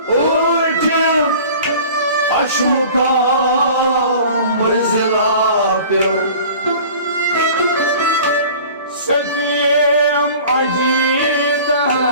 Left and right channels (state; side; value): inverted; both; correlation -0.44